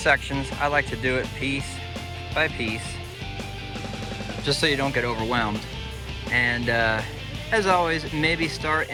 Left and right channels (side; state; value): both; identical; correlation 1.00